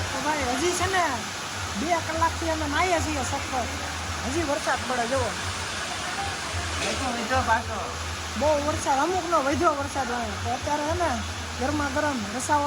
તો ભાઈ હજી છે ને 2 કલાકથી અમે નાહીએ છીએ સખત, હજી વરસાદ પડે જુઓ. મીઠો પાછો બહુ વરસાદ, અમુકનો વધ્યો વરસાદ આવે. તો અત્યારે છે ને ગરમા ગરમ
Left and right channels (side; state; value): both; identical; correlation 1.00